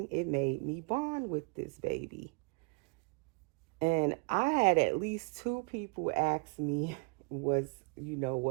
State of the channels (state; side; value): quieter; left; 32.6 dB